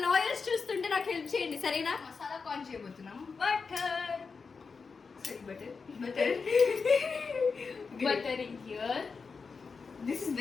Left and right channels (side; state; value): right; quieter; 5.0 dB